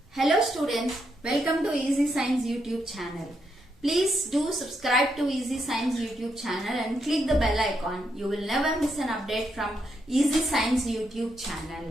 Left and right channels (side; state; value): both; normal; correlation 0.80